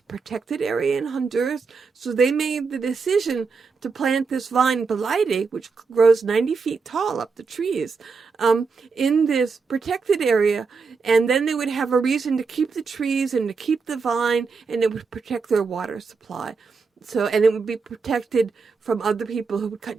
protected area in Honduras. So they made the decision to plant this vine, Belide, which grows 90 feet tall up the trees, in this protected area. And then they would have a reason to keep the trees and to keep the vine, and it would protect their water supply. So, and it would be protected from other people who would cut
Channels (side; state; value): left; quieter; 4.9 dB